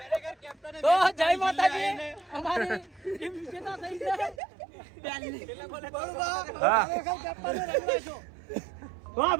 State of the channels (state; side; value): drops out; left; at 4.4 s